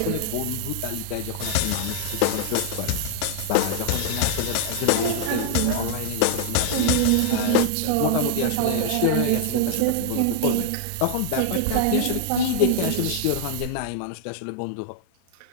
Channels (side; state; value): both; different; correlation 0.00